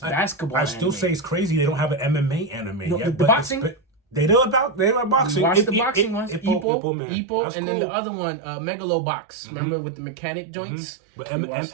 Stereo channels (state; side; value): drops out; left; at 6.7 s